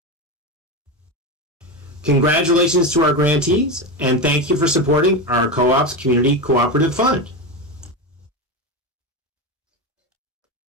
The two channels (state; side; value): normal; both; correlation 0.17